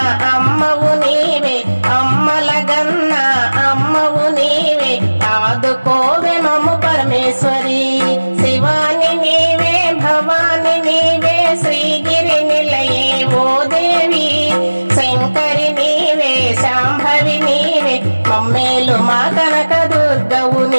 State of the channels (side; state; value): both; inverted; correlation -1.00